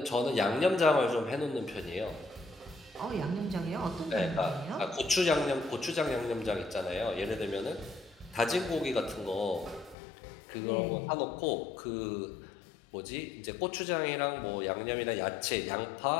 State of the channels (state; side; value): drops out; right; at 10.0 s